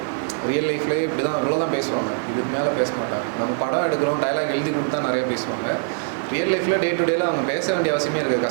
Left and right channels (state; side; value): silent; left; digital silence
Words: ரியல் லைஃப்லேயே இப்படி தான் இவ்வளோ தான் பேசுவாங்க, இதுக்கு மேலே பேச மாட்டாங்க. நம்ம படம் எடுக்கிறோம், டைலாக் எழுதி கொடுத்தா நிறைய பேசுவாங்க. ரியல் லைஃப்பில் டே டு டேல அவங்க பேச வேண்டிய அவசியமே இருக்குது.